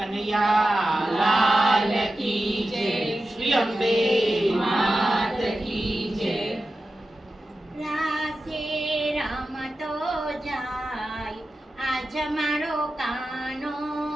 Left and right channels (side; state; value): both; normal; correlation 0.93